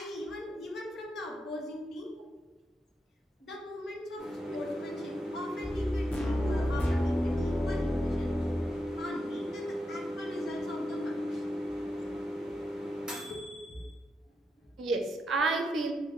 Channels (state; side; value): normal; both; correlation 0.85